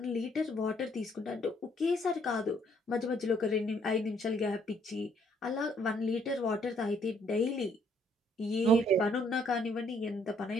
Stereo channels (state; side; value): normal; both; correlation 0.66